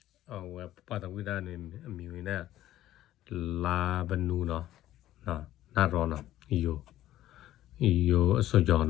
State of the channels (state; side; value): quieter; right; 13.8 dB